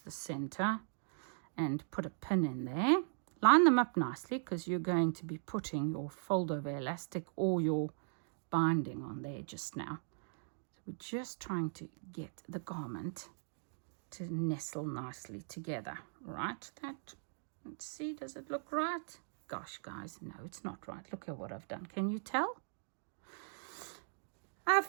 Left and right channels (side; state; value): left; silent; digital silence